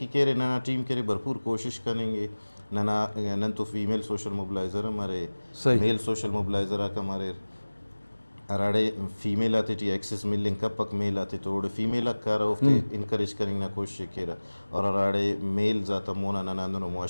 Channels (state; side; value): inverted; both; correlation -1.00